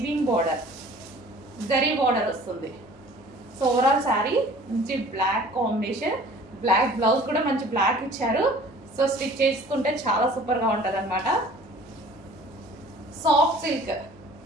బార్డర్, జరీ బార్డర్ వస్తుంది. సో ఓవరాల్ శారీ మంచి బ్లాక్ కాంబినేషన్, బ్లాక్ బ్లౌజ్ కూడా మంచి బ్లాక్ ఇచ్చారు. సో స్టిచ్ చేసుకుంటే చాలా సూపర్ గా ఉంటది అనమాట. సాఫ్ట్ సిల్క్,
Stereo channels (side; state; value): both; normal; correlation 0.48